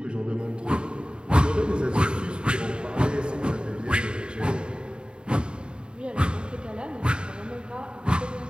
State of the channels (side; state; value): left; late; 0.051 ms